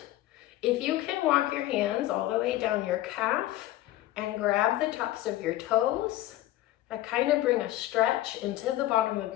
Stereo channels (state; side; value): quieter; right; 15.1 dB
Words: If you can walk your hands all the way down your calf and grab the tops of your toes, that kind of bring a stretch into the bottom of